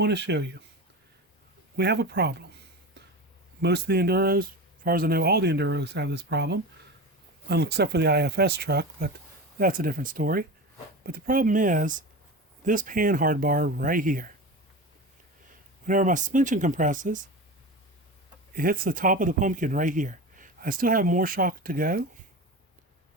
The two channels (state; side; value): normal; both; correlation 0.27